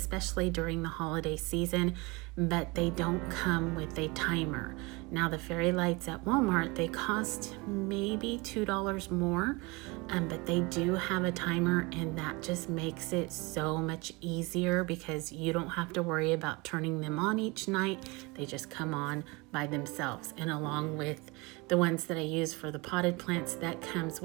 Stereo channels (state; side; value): quieter; left; 25.7 dB